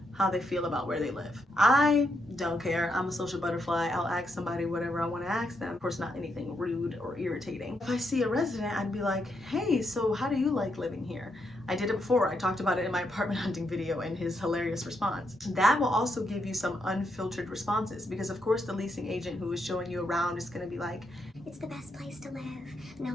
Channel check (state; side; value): normal; both; correlation 0.80